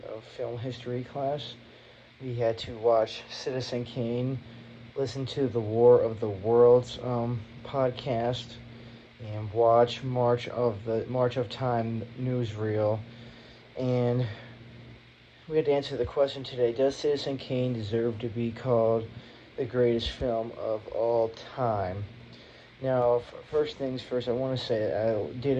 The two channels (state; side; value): identical; both; correlation 1.00